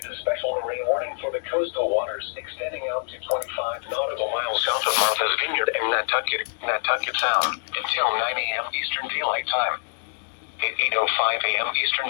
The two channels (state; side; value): silent; right; digital silence